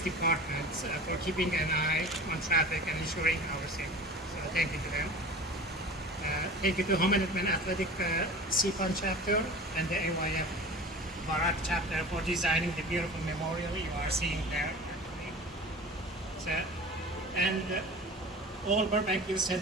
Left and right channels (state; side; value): normal; both; correlation 0.37